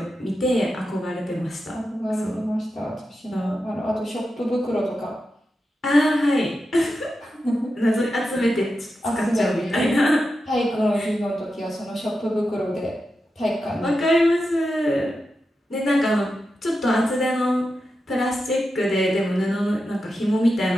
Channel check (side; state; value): both; normal; correlation 0.89